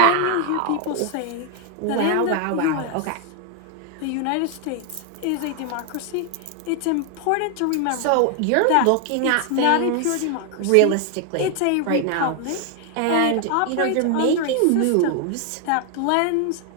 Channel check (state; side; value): different; both; correlation 0.00